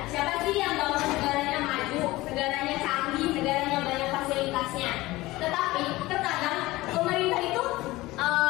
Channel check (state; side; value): quieter; right; 19.1 dB